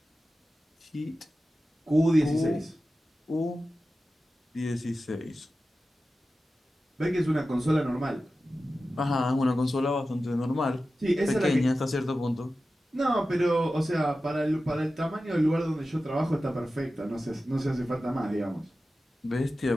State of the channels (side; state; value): both; normal; correlation 0.94